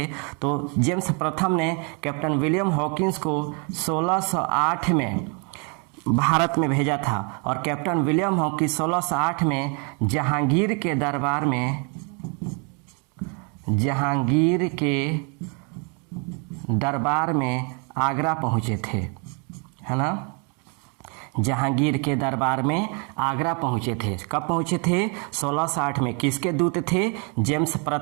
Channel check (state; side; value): quieter; left; 35.9 dB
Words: तो जेम्स प्रथम ने कैप्टन विलियम हॉकिंस को 1608 में भारत में भेजा था और कैप्टन विलियम हॉकिंस 1608 में जहांगीर के दरबार में आगरा पहुँचे थे, है ना। जहांगीर के दरबार में आगरा पहुँचे थे। कब पहुँचे थे? 1608 में। किसके दूत थे? जेम्स